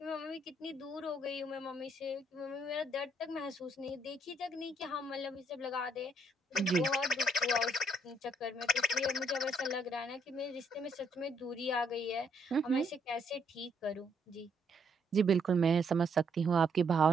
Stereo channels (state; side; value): normal; both; correlation 0.71